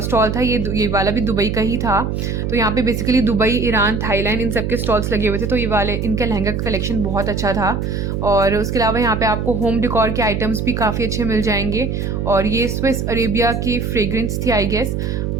था ये वाला भी दुबई का ही था। तो यहाँ पे बेसिकली दुबई, ईरान, थाईलैंड इन सब के स्टॉल्स लगे हुए थे। तो ये वाले इनका लहंगा का कलेक्शन बहुत अच्छा था। और उसके अलावा यहाँ पे आपको होम डेकोर के आइटम्स भी काफ़ी अच्छे मिल जाएंगे। और ये स्विस अरेबिया की फ्रेग्रेंस थी आई गेस।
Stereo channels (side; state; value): right; noise; hum, 2 dB below the sound